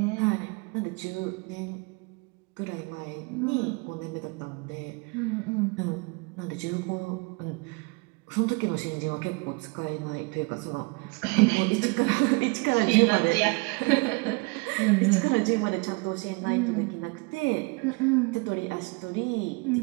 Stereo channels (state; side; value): quieter; left; 28.9 dB